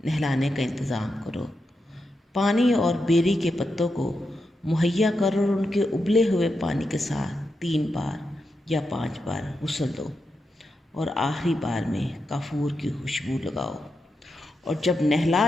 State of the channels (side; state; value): both; normal; correlation 0.86